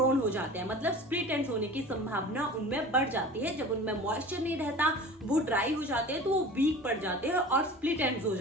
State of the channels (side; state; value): both; normal; correlation 0.39